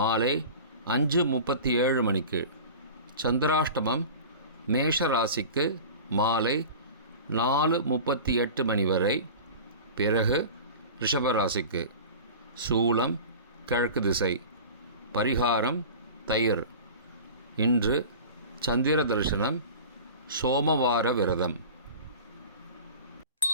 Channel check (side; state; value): both; inverted; correlation -0.36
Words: 5:37 மணிக்கு. சந்திராஷ்டமம் மேஷ ராசிக்கு மாலை 4:38 மணி வரை, பிறகு ரிஷபராசிக்கு. சூலம் கிழக்கு திசை. பரிகாரம் தயிர். இன்று சந்திர தரிசனம், சோமவார விரதம்.